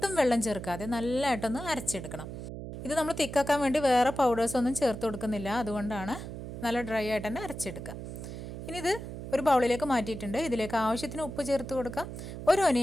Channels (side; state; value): right; noise; hum, 9 dB below the sound